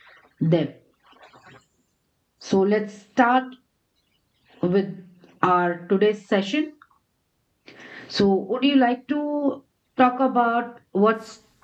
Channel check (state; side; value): identical; both; correlation 1.00